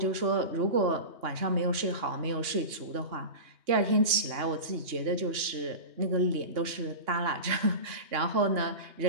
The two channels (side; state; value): left; late; 2.8 ms